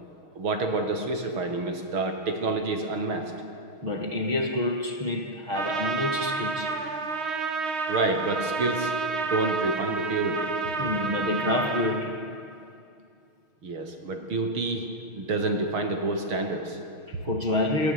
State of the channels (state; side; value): late; left; 6.4 ms